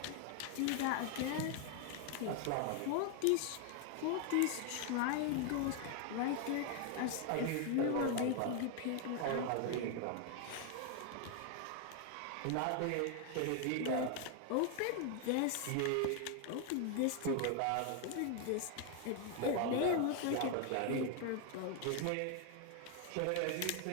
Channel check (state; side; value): different; both; correlation 0.00